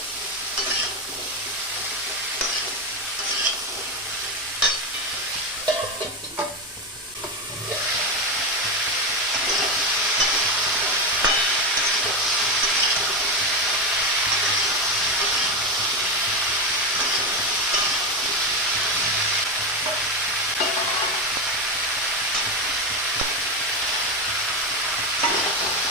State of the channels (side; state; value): both; normal; correlation 0.13